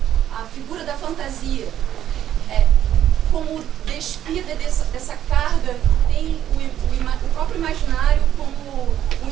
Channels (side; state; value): left; quieter; 11.0 dB